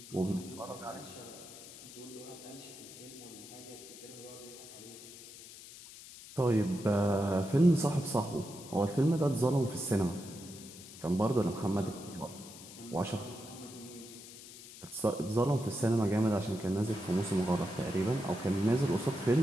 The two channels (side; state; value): left; noise; hiss, 16 dB below the sound